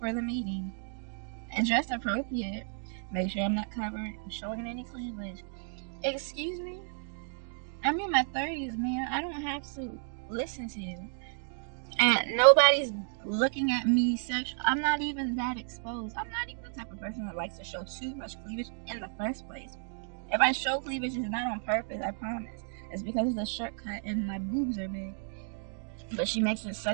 the meeting. And dressed appropriate, make sure I'm not covered, showing any cleavage. Excuse me? I'm in my 30s, man. I don't have to listen to you. And nobody's looking at me sexual. I'm not even that exposed. I'm not even the type of person that likes to show too much cleavage in the first place. If I show cleavage, it's not on purpose, I promise. It's because of the shirt cut and my boobs are big. But she makes it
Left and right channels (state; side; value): silent; left; 56 dB below the other